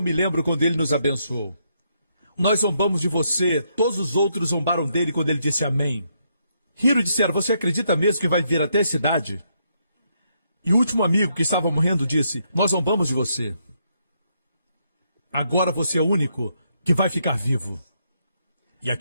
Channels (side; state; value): both; inverted; correlation -0.76